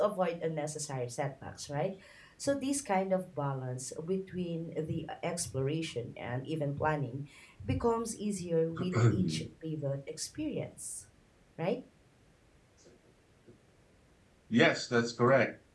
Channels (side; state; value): both; identical; correlation 1.00